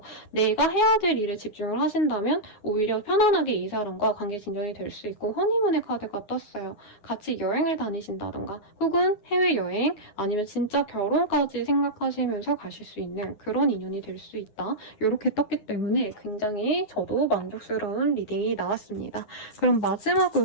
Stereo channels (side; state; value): right; late; 9.8 ms